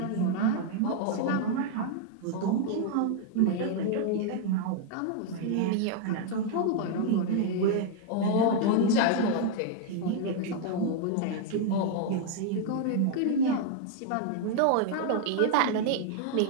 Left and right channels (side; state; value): both; different; correlation 0.00